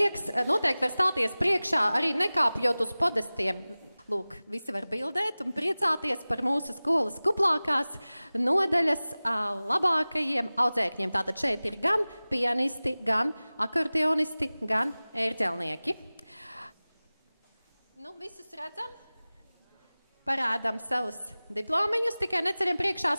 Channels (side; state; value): both; inverted; correlation -0.98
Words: noteikti var stāties priekšā, arī nekāpjot uz podestiem. Lūk, visi var bildēt un priecāties par mūsu skolas kuplākās nodaļas labākajiem audzēkņiem. Tātad šeit ir gan pianisti, gan akordeonisti, gan ērģelnieki. Nu, visus redzam? Parādām savus diplomiņus, tikai neceļam priekšā